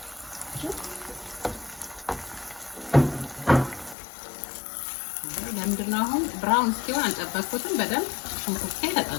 ለምንድነው አሁን ብራውን እስኪሆን አልጠበቅኩትም። በደንብ ሽንኩርቴ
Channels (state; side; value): drops out; right; at 4.0 s